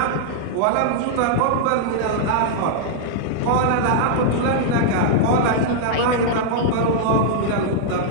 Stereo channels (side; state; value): both; different; correlation -0.01